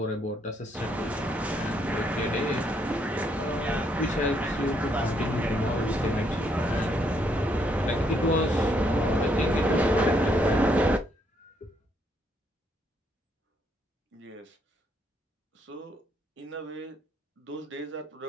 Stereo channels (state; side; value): normal; both; correlation 0.72